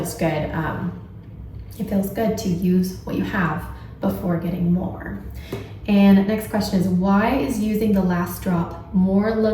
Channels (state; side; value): identical; both; correlation 1.00